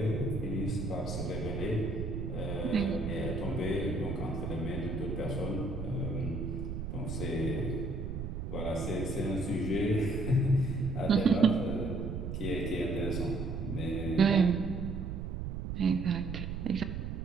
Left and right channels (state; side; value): noise; right; rumble, 4 dB below the sound